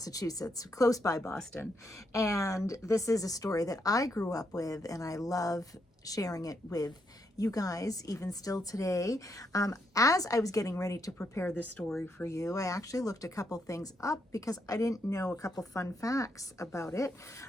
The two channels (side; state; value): both; normal; correlation 0.78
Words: close by Boston. And this is a story that I grew up with, and I love sharing it with you guys, even still today. As I was getting ready to prepare this story for you, I actually looked a couple things up because I didn't know a couple fun facts about it.